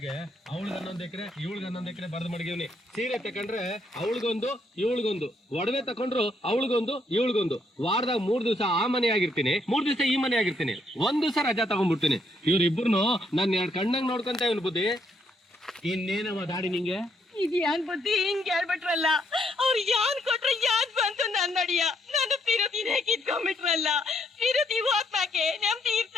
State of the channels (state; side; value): normal; both; correlation 0.73